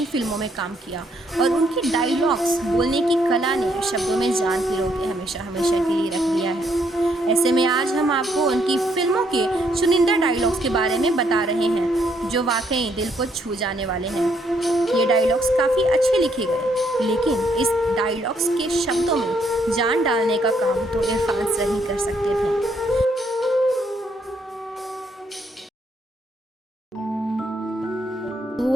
फिल्मों में काम किया और उनकी डायलॉग्स बोलने की कला ने शब्दों में जान पिरो के हमेशा हमेशा के लिए रख दिया है। ऐसे में आज हम आपको उनकी फिल्मों के चुनिंदा डायलॉग्स के बारे में बता रहे हैं, जो वाकई दिल को छू जाने वाले हैं। ये डायलॉग्स काफ़ी अच्छे लिखे गए, लेकिन इस डायलॉग्स के शब्दों में जान डालने का काम तो इरफान सर ही कर सकते थे।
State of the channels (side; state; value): both; normal; correlation 0.71